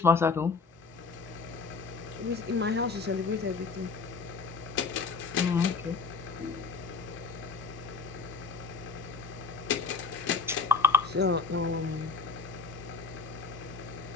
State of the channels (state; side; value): quieter; right; 4.7 dB